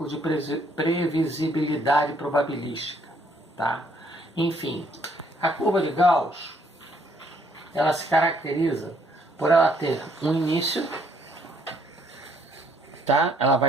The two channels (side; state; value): both; normal; correlation 0.67